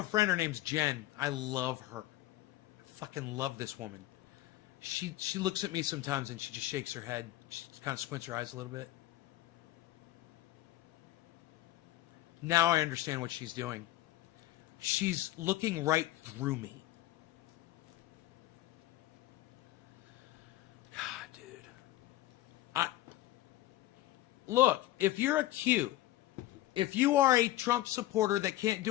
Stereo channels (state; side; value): quieter; right; 15.6 dB